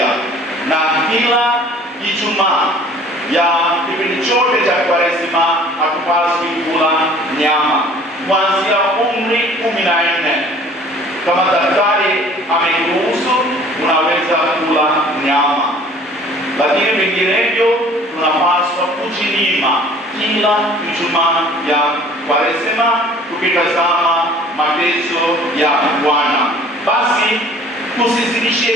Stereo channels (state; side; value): normal; both; correlation 0.50